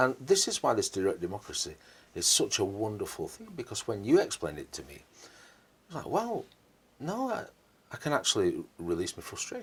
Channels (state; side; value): identical; both; correlation 1.00